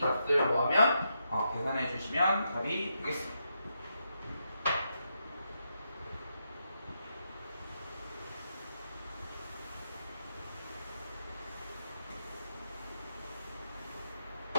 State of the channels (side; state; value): both; inverted; correlation -0.83